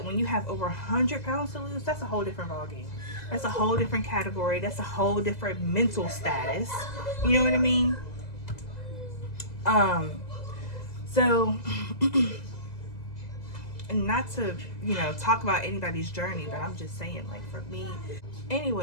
when you have over 100 pounds to lose, that's a whole different ballgame. That's a whole different category. That's a whole different mental status. You know what I mean? So, and not to, you know, talk about anybody's journey, but I'm just saying, like, for me.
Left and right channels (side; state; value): right; late; 2.0 ms